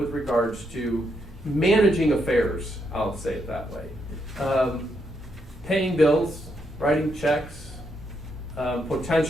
regards to managing affairs, I'll say it that way. Paying bills, writing checks,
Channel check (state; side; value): normal; both; correlation 0.78